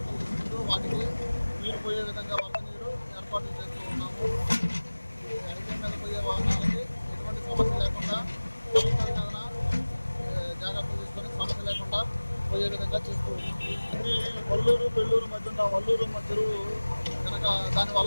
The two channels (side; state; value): both; inverted; correlation -1.00